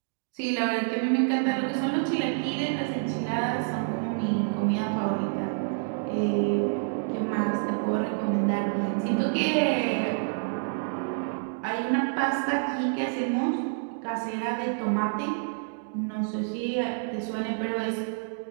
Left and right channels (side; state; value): left; silent; digital silence